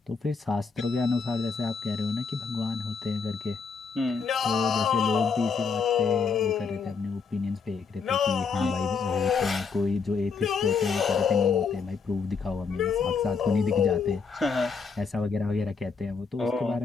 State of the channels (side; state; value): right; quieter; 5.2 dB